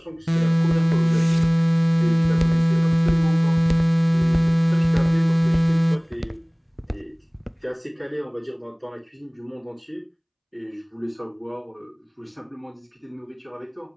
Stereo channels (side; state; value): both; identical; correlation 1.00